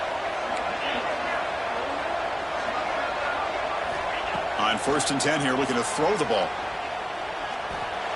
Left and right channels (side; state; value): both; identical; correlation 1.00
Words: On 1st and 10 here, looking to throw the ball.